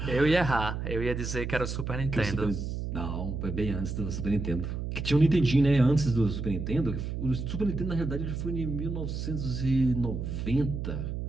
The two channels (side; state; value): right; noise; hum, 4 dB below the sound